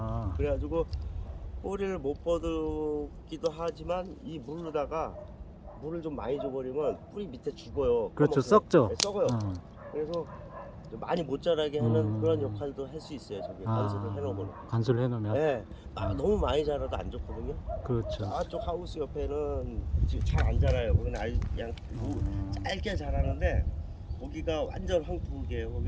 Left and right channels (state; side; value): identical; both; correlation 1.00